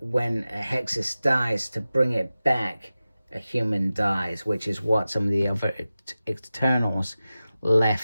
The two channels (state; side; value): inverted; both; correlation -0.95